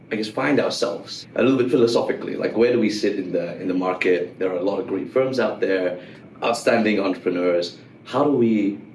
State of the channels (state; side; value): identical; both; correlation 1.00